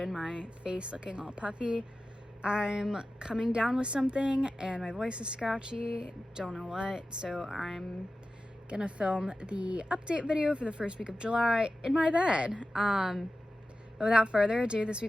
my face looking all puffy. I'm coming down with something and my voice is scratchy, don't know what, so I'm gonna film the update video for the first week of July in my bed. But without further ado, this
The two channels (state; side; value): normal; both; correlation 0.94